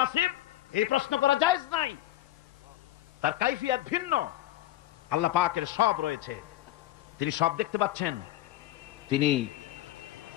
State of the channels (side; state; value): right; quieter; 14.8 dB